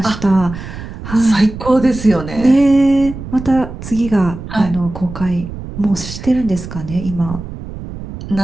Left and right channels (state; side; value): noise; right; rumble, 11 dB below the sound